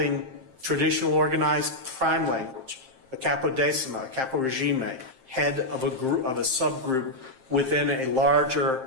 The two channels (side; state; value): left; late; 7.6 ms